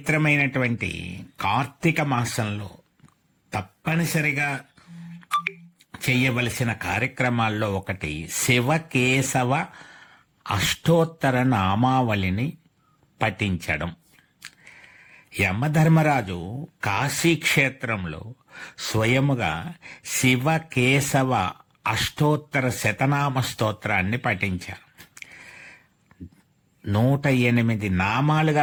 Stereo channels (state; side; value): identical; both; correlation 1.00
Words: కార్తీక మాసంలో తప్పనిసరిగా చేయవలసిన కార్యక్రమాల్లో ఒకటి శివకేశవ అష్టోత్తర నామావళిని పఠించడం. యమధర్మరాజు కాశీక్షేత్రంలో స్వయముగా శివకేశవ అష్టోత్తర శతనామ స్తోత్రాన్ని పఠించారు. 108